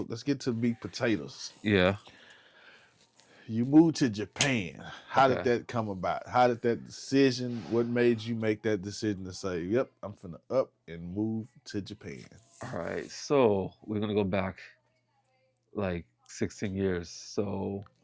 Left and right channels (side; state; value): both; identical; correlation 1.00